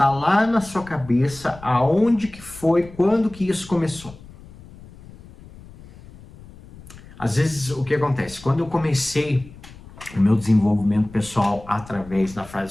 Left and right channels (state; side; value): noise; left; rumble, 20 dB below the sound